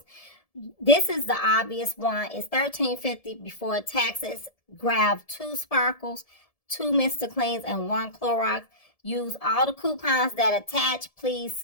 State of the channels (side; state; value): right; late; 1.7 ms